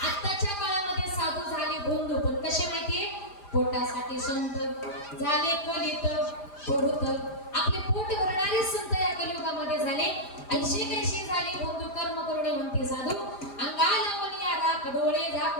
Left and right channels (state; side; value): late; right; 5.0 ms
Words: आत्ताच्या काळामध्ये साधू झाले भोंदू पण कसे माहितीये पोटासाठी संत झाले कलित पुरुत. आपले पोट भरणारे संत या कलियुगामध्ये झाले. 80 झाले भोंदू कर्म करुणे म्हणते साधू अंगाला मनिया राख डोळे